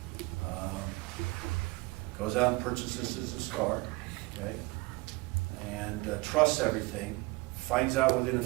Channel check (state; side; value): quieter; left; 24.6 dB